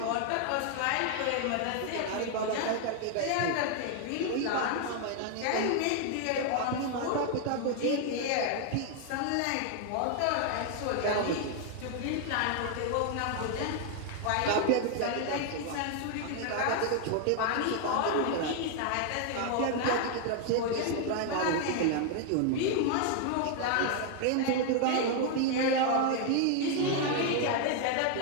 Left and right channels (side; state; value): both; different; correlation 0.00